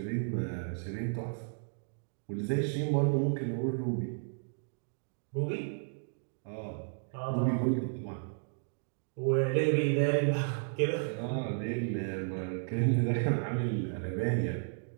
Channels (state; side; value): silent; left; digital silence